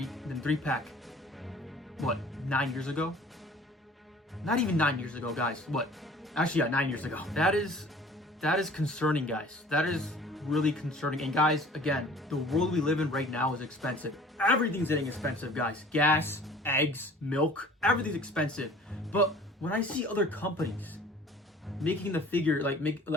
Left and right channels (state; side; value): normal; both; correlation 0.48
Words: What, 9 years ago? Not even 9 years ago, guys. What? Actually, yeah, 9 years ago. That is concerning, guys. That is really concerning. And guys, again, the world we live in right now is expensive. Everything's getting expensive, guys. Gas, eggs, milk, everything's expensive. But when I see other companies making the figure, like make